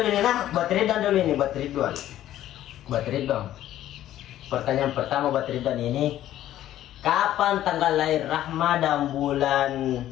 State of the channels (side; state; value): right; quieter; 12.8 dB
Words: ini nah, buat Ridwan. Pertanyaan pertama buat Ridwan ini, kapan tanggal lahir Rahma dan bulan